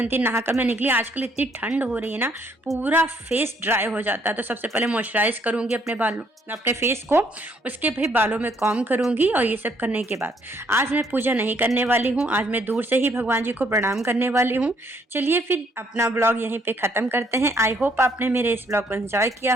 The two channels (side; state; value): both; normal; correlation 0.67